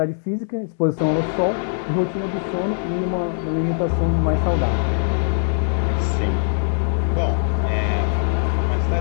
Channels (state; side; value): silent; right; digital silence